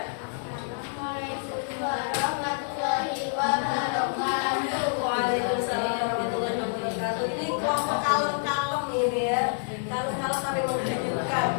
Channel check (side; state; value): right; silent; digital silence